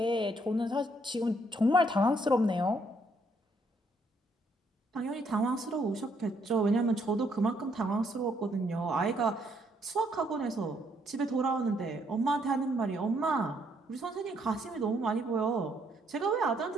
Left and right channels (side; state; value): both; normal; correlation 0.71